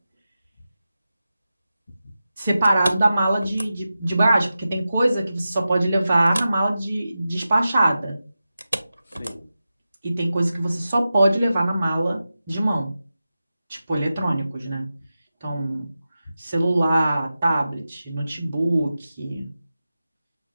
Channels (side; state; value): both; inverted; correlation -0.93